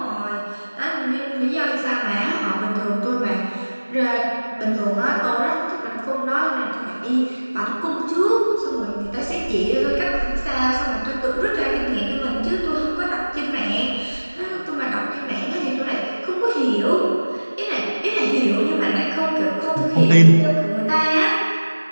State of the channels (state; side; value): inverted; both; correlation -1.00